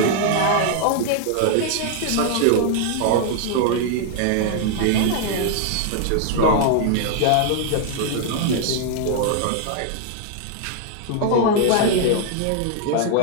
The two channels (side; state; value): both; different; correlation 0.00